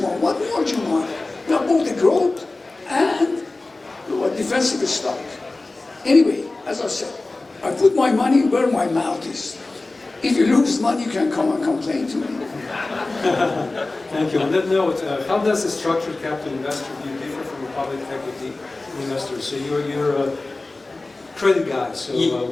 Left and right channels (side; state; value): right; quieter; 3.2 dB